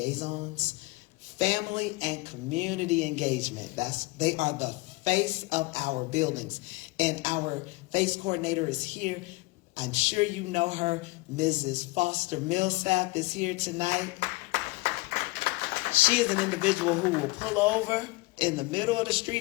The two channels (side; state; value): right; quieter; 23.5 dB